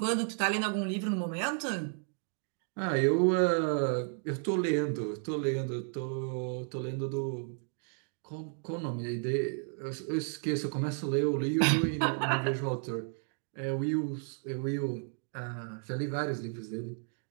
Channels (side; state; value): left; silent; 55 dB below the other